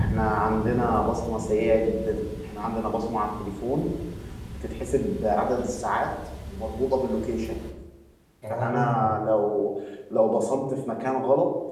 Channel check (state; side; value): identical; both; correlation 1.00